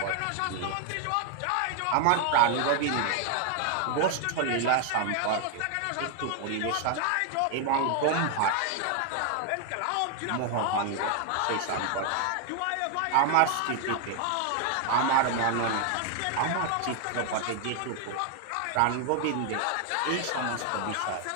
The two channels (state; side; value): different; both; correlation 0.00